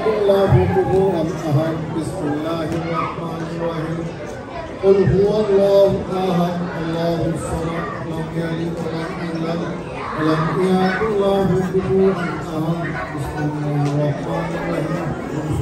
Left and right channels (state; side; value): identical; both; correlation 1.00